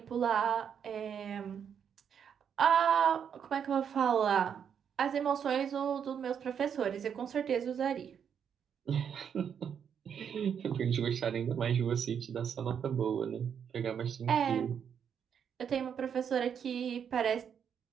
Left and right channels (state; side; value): quieter; left; 7.8 dB